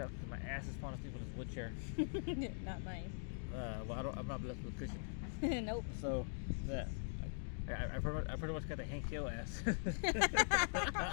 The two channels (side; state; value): right; silent; digital silence